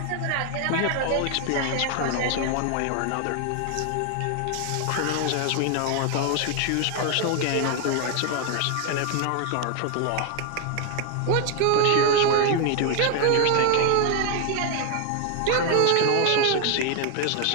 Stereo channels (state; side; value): different; both; correlation 0.00